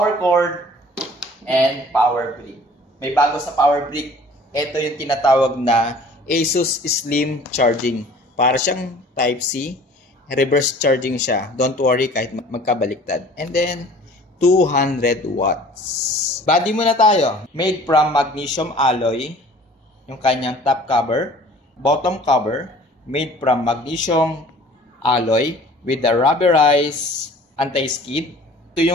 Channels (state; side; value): normal; both; correlation 0.49